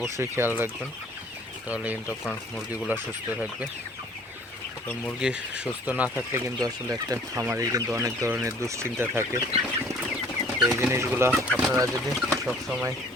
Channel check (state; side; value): normal; both; correlation 0.54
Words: খেয়াল রাখবেন, তাহলে কিন্তু আপনার মুরগিগুলো সুস্থ থাকবে। তো মুরগি সুস্থ না থাকলে কিন্তু আসলে একটা খামারের কিন্তু অনেক ধরনের দুশ্চিন্তা থাকে। তো এই জিনিসগুলো আপনারা যদি সবসময়